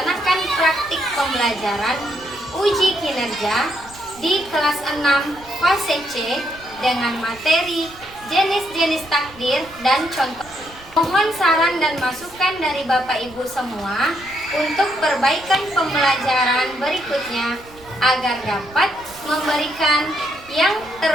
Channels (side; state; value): right; noise; rumble, 22 dB below the sound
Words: praktik pembelajaran uji kinerja di kelas 6 fase C dengan materi jenis-jenis takdir dan contoh. Mohon saran dan masukan dari Bapak Ibu semua untuk perbaikan pembelajaran berikutnya agar dapat memberikan yang